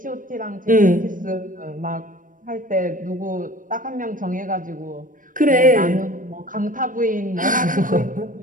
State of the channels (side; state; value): left; late; 0.39 ms